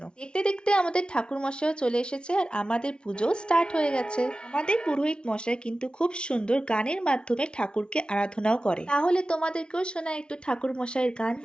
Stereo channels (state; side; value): late; right; 0.055 ms